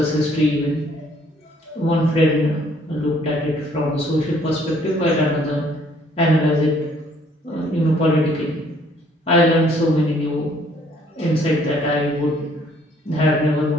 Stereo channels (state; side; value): normal; both; correlation 0.62